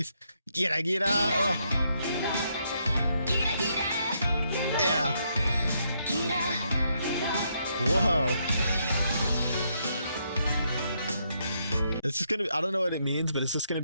Gira Gira. Oh. Yeah. Whoa. It's just gonna. I don't know what it means, but it's just gonna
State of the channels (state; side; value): inverted; both; correlation -0.76